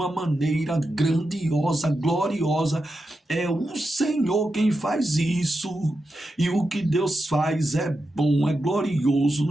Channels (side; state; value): both; normal; correlation 0.88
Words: maneira grandiosa, gloriosa. É o Senhor quem faz isso, e o que Deus faz é bom, é glorioso,